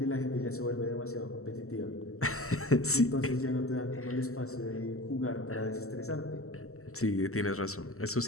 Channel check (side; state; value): right; late; 0.63 ms